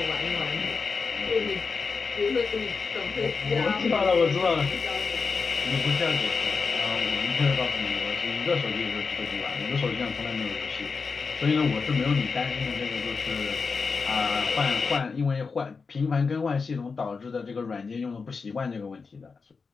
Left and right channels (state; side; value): quieter; right; 4.9 dB